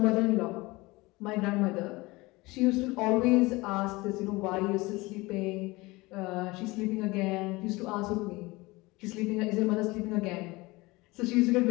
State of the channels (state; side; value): quieter; right; 22.3 dB